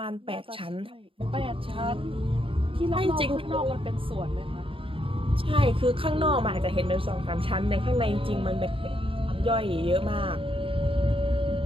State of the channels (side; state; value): left; late; 0.26 ms